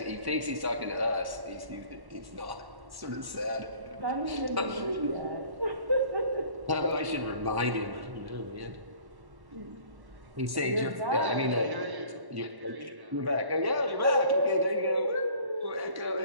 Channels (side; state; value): left; late; 1.1 ms